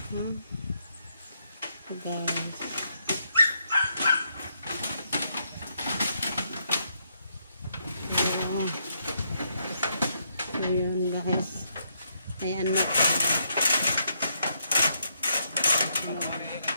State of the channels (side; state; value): both; inverted; correlation -0.77